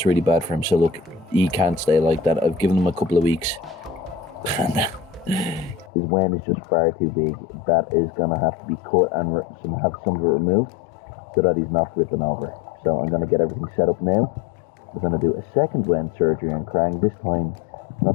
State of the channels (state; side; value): drops out; right; at 5.9 s